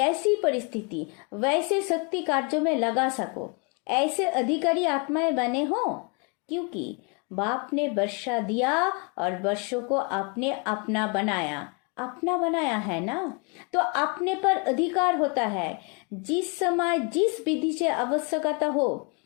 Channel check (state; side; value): quieter; right; 33.4 dB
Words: परिस्थिति, वैसे शक्ति कार्यों में लगा सको, ऐसे अधिकारी आत्माएं बने हो। क्योंकि बाप ने वर्षा दिया और वर्षों को आपने अपना बनाया है ना, तो अपने पर अधिकार होता है। जिस समय जिस विधि से आवश्यकता हो,